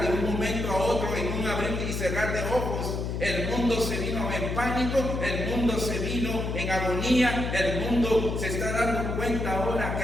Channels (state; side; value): noise; left; hum, 3 dB below the sound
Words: un momento a otro, en un abrir y cerrar de ojos, el mundo se vino en pánico, el mundo se vino en agonía, el mundo se está dando cuenta ahora